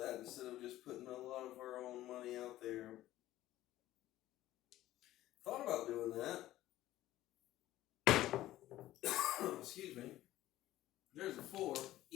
instead of just putting a lot of our own money out there. Thought about doing that. Excuse me. There's a 4,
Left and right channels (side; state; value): right; quieter; 14.9 dB